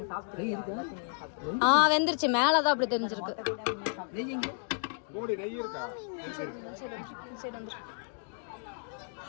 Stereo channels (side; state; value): right; silent; digital silence